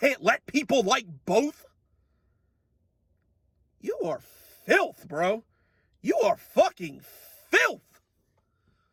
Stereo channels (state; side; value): identical; both; correlation 1.00